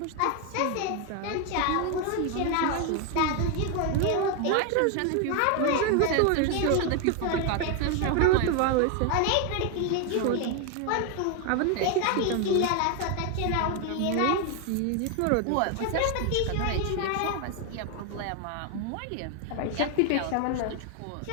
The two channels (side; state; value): both; different; correlation 0.01